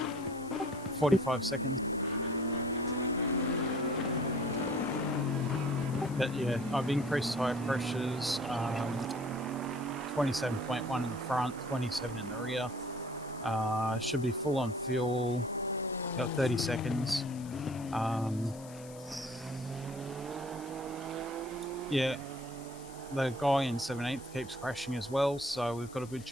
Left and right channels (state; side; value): noise; left; hiss, 19 dB below the sound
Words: 45 seconds. But yeah, I've increased tyre pressures, 27.1 in the front, 27 in the rear. Should be full on fuel, got 30 seconds. Yeah, the guy in 17th keeps crashing as well, so we've got a good